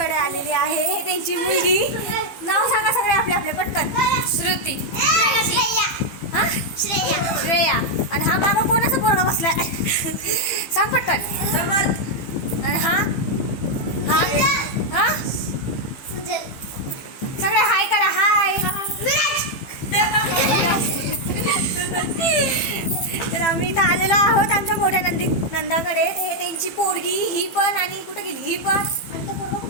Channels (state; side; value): late; right; 15 ms